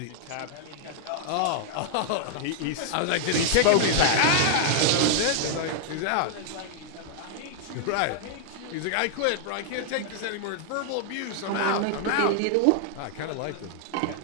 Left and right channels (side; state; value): both; different; correlation 0.00